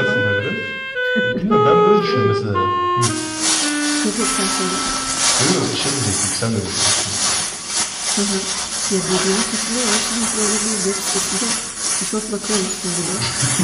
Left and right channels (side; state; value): both; identical; correlation 1.00